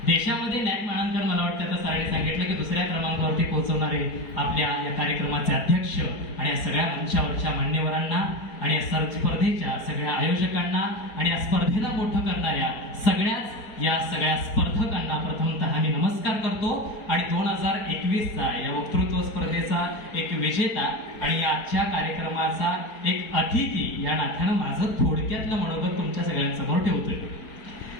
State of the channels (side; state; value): right; late; 4.5 ms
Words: देशामध्ये नॅक मानांकन, मला वाटतं आता सरांनी सांगितलं की दुसऱ्या क्रमांकावरती पोहोचवणारे आपल्या या कार्यक्रमाचे अध्यक्ष आणि या सगळ्या मंचावरच्या मान्यवरांना आणि या स्पर्धेच्या सगळ्या आयोजकांना आणि या स्पर्धेला मोठं करणाऱ्या या सगळ्या स्पर्धकांना प्रथमतः मी नमस्कार करतो. आणि 2021चा या वक्तृत्व स्पर्धेचा एक विजेता आणि आजच्या कार्यक्रमाचा एक अतिथी या नात्यानं माझं थोडक्यातलं मनोगत तुमच्या सगळ्यांसमोर ठेवतोय.